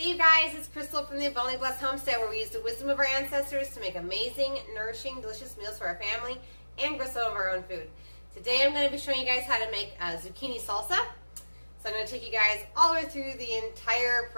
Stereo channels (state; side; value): inverted; both; correlation -1.00